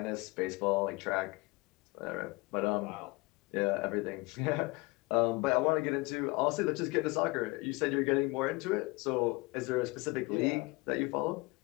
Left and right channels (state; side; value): quieter; right; 24.7 dB